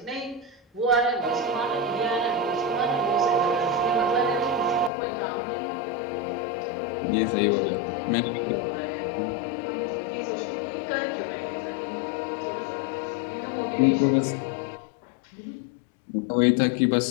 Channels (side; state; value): right; drops out; at 4.9 s